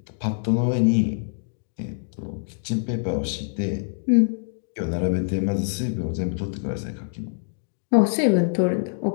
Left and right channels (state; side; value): silent; right; digital silence